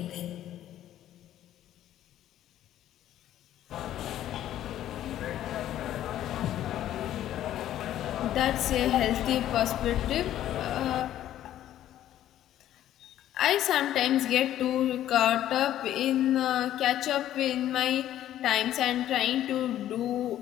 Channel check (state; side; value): quieter; right; 12.3 dB